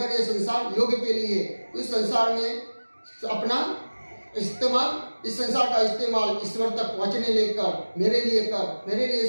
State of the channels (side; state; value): both; inverted; correlation -1.00